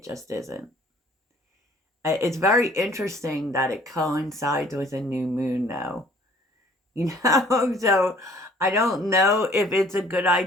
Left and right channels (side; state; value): both; normal; correlation 0.56